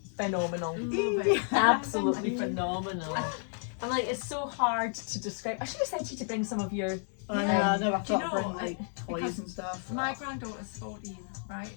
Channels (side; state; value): right; silent; 57 dB below the other